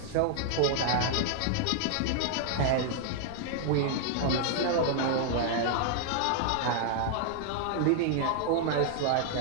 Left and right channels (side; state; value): both; different; correlation -0.01